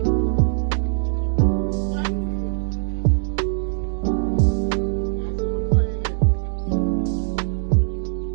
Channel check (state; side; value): silent; left; digital silence